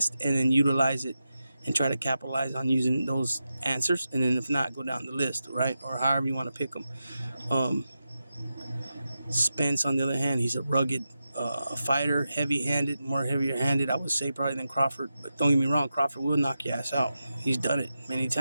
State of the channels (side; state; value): both; inverted; correlation -0.90